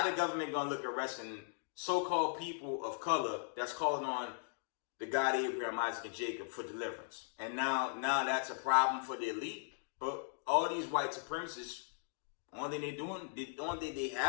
the government going to look at arresting so-called people of color that's calling on the God Abraham, Isaac, and Jacob for deliverance? And now that's a problem for the elite. But all these white supremacists, only thing they're doing, the only thing they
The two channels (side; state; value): right; silent; digital silence